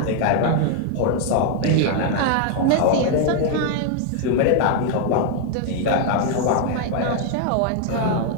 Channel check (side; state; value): both; different; correlation 0.00